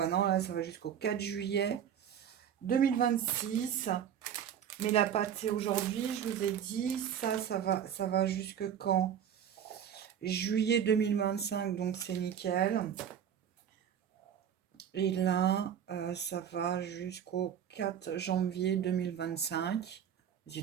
non, là, ça va jusqu'au 4 juillet 2026. Mais la pâte, c'est aujourd'hui, je vous ai dit. Ça va jusque quand? Juillet 2025, donc c'est nickel. Et là, ça va jusqu'au 4 janvier 2025. C'est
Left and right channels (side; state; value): left; quieter; 9.0 dB